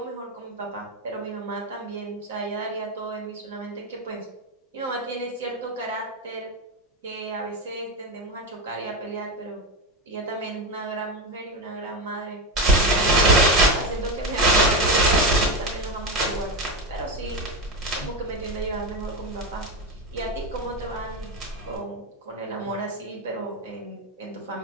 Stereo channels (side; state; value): both; normal; correlation 0.15